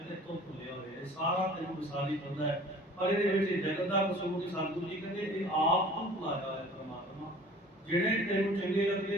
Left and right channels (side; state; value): both; normal; correlation 0.47